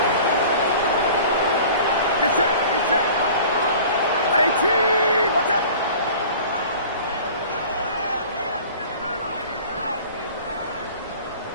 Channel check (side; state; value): both; inverted; correlation -0.44